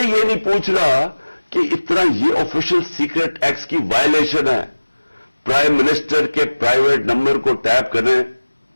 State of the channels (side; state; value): both; inverted; correlation -1.00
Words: یہ نہیں پوچھ رہا کہ اتنا یہ آفیشل سیکرٹ ایکٹ کی وائلیشن ہے. پرائم منسٹر کے پرائیویٹ نمبر کو ٹیپ کریں